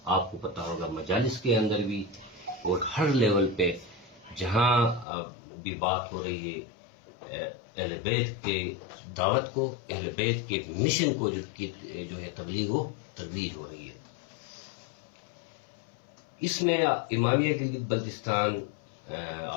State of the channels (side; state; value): right; drops out; at 5.1 s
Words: آپ کو پتہ ہوگا مجالس کے اندر بھی اور ہر لیول پہ جہاں بھی بات ہو رہی ہے اہل بیت کی دعوت کو، اہل بیت کے مشن کو جو ہے تبلیغ و ترویج ہو رہی ہے. اس میں امامیہ گلگت بلتستان،